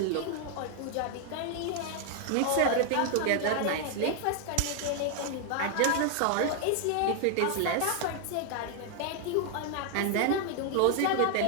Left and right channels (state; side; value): different; both; correlation 0.00